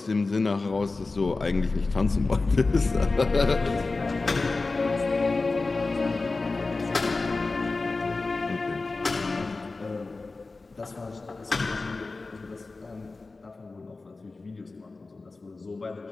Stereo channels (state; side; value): quieter; right; 3.6 dB